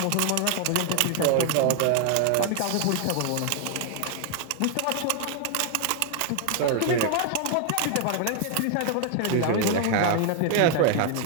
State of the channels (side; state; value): both; different; correlation 0.00